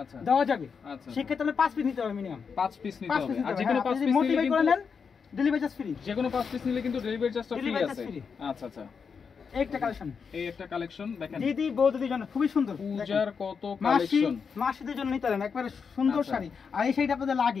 আচ্ছা দেওয়া যাবে। আচ্ছা সেক্ষেত্রে আপনি 5 পিস নিতে হবে, মিনিমাম 5 পিস নিতে হবে। আর যে কোনো 5 পিস মোটিভেট নিলে করে কিন্তু নেন, ডেলিভারি চার্জ ফ্রি। যে কোনো 5 পিস নিলে কিন্তু ডেলিভারি চার্জটা ফ্রি আছে। আচ্ছা আচ্ছা, একটা কালেকশন, এই একটা কালেকশন দেখেন, দিদি বৌদিদের জন্য খুবই সুন্দর। পূজার কত কালেকশন, মাসিদের জন্য নিতে পারেন, একবারে সুন্দর শাড়ি। আর এই শাড়িটা আপনাদের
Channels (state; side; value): quieter; right; 5.9 dB